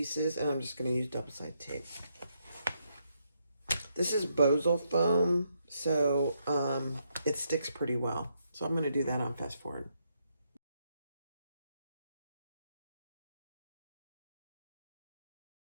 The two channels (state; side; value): inverted; both; correlation -0.78